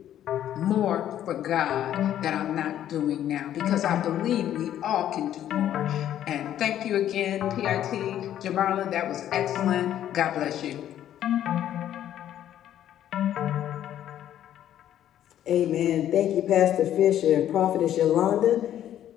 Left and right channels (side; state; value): right; quieter; 11.3 dB